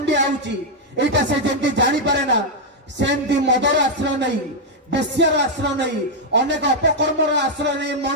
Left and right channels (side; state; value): both; normal; correlation -0.01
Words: आउची एटा से जमी जानी पारे ना सेमती मदर आश्रय नहीं बेश्यार आश्रय नहीं अनेक अपकर्मर आश्रय नहीं